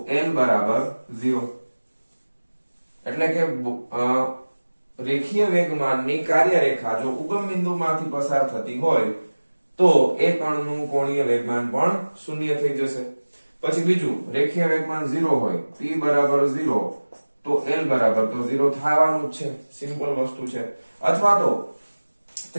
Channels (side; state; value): both; inverted; correlation -1.00